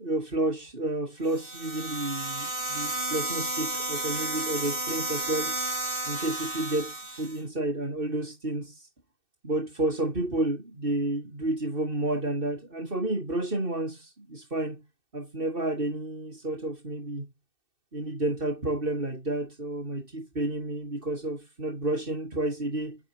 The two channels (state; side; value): late; left; 2.6 ms